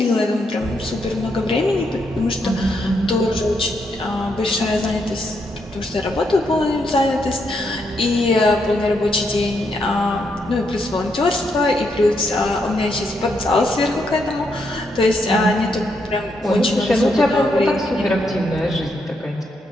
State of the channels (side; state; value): both; normal; correlation 0.78